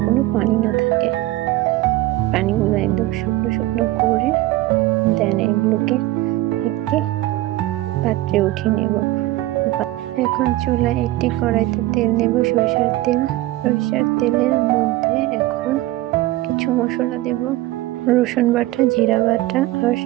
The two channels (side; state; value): left; quieter; 17.1 dB